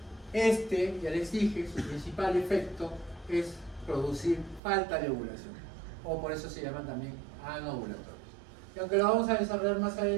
ya les dije, su principal efecto es producir falta de ovulación, o por eso se llaman también anovulatorios. Y aunque lo vamos a desarrollar más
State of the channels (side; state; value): left; drops out; at 4.6 s